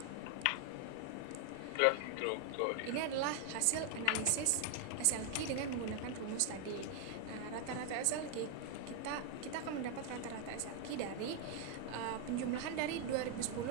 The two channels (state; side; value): different; both; correlation 0.00